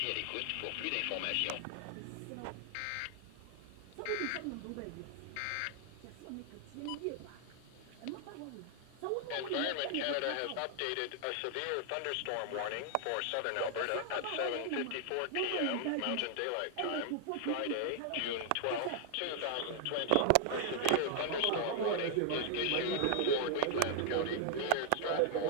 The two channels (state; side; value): different; both; correlation 0.00